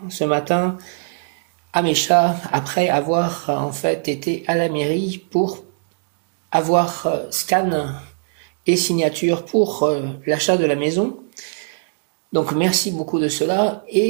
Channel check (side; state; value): left; silent; digital silence